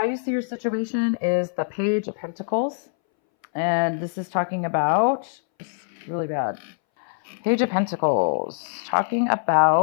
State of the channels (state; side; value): silent; right; 62 dB below the other